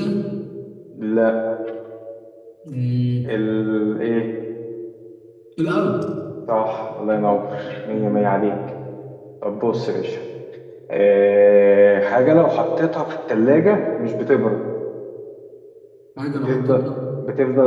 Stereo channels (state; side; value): identical; both; correlation 1.00